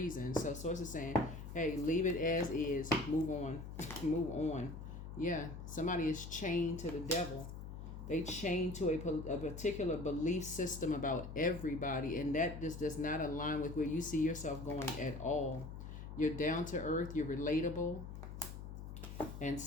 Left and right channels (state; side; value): noise; left; hum, 9 dB below the sound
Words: So sources saying, hey, leave it as is, move on, move on. Yeah, somebody is chained to the devil. They chain to a particular belief system about everybody, and that just does not align with where you see yourself going at all. You're down to earth, you're relatable, and